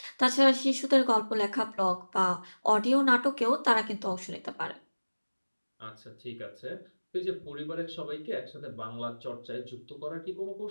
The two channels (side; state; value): both; inverted; correlation -1.00